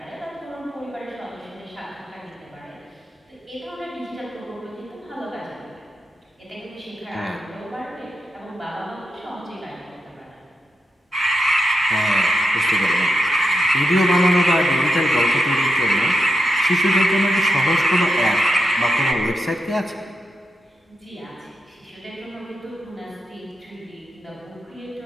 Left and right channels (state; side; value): normal; both; correlation 0.84